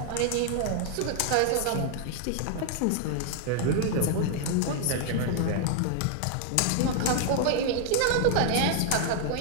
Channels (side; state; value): both; different; correlation 0.00